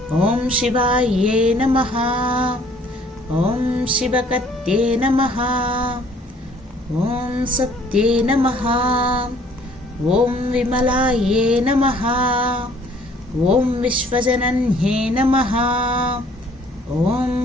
ఓం శివాయే నమః, ఓం శివకత్యే నమః, ఓం సత్యే నమః, ఓం విమలాయే నమః, ఓం విశ్వజనన్యే నమః, ఓం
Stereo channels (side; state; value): both; normal; correlation 0.58